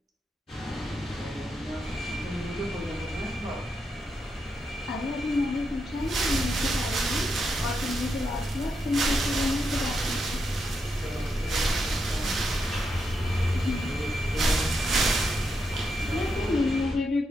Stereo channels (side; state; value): both; normal; correlation 0.83